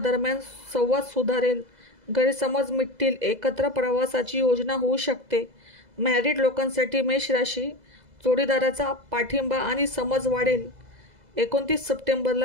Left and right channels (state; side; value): late; left; 2.0 ms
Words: संवाद सुधारेल. गैरसमज मिटतील. एकत्र प्रवासाची योजना होऊ शकते. मॅरिड लोकांसाठी मेष राशी जोडीदाराचा पाठिंबा आणि समज वाढेल. 29